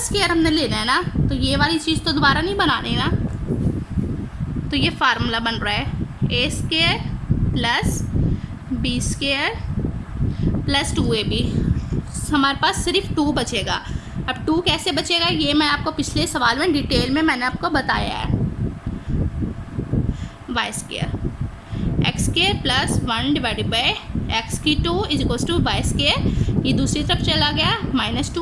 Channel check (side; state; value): both; identical; correlation 1.00